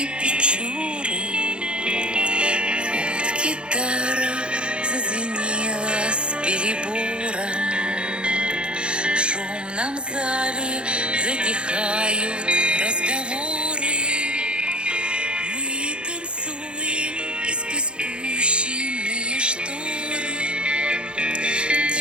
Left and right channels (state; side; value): late; left; 0.055 ms